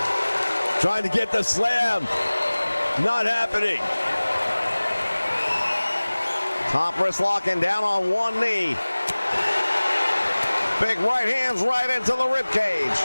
Trying to get the slam. Not happening. Top wrist locking down on one knee. Big right hands right into the rib cage.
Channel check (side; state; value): both; inverted; correlation -1.00